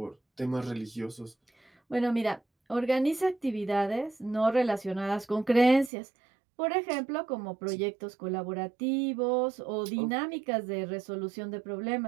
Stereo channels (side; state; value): left; drops out; at 5.9 s